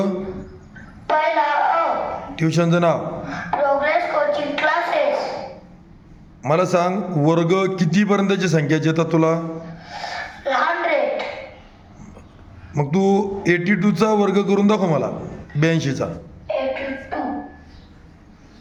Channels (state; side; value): identical; both; correlation 1.00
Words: पहिला अ. ट्युशनचं नाव. Progress Coaching Classes. मला सांग वर्ग कितीपर्यंतची संख्याची येतात तुला. 100. मग तू 82चा वर्ग करून दाखव मला 82चा. 82.